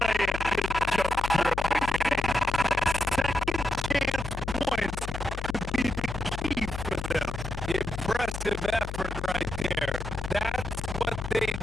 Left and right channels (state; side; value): noise; left; hum, 6 dB below the sound